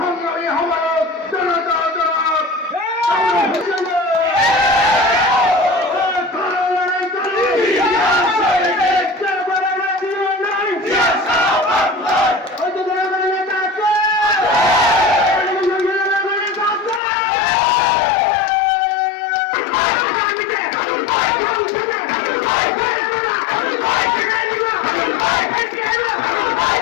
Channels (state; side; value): drops out; right; at 17.0 s